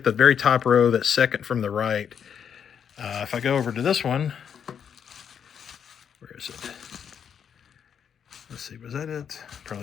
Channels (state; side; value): quieter; right; 7.9 dB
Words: the very top row, that second from the right, if I go over to this one, where is it? Let's see, was that it?